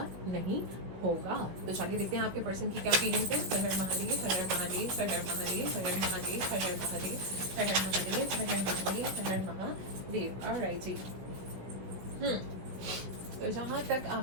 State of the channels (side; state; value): left; late; 16 ms